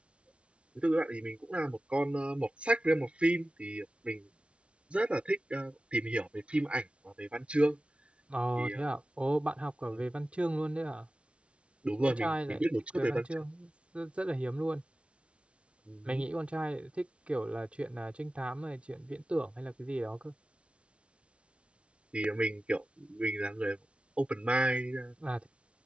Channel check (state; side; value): late; left; 0.060 ms